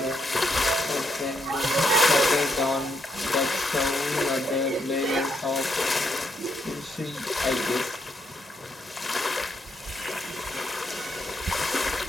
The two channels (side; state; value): both; normal; correlation 0.77